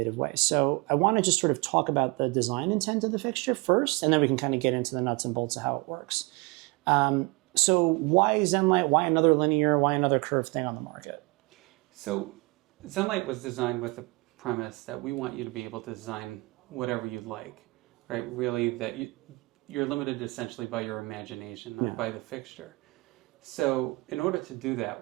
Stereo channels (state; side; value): quieter; left; 26.1 dB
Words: way. So I want to just sort of talk about the design intent of the fixture first, and then we can kind of get into the nuts and bolts of how it works. So why Zenlite? Why another linear? Why another curved thing on the market? So Zenlite was designed with the premise that we want you to be able to design whatever you'd like, right? Really, that you're limited essentially by your imagination, not by the fixture. So in order to do that,